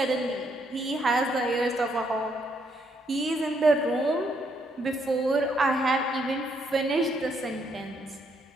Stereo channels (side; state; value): both; normal; correlation 0.73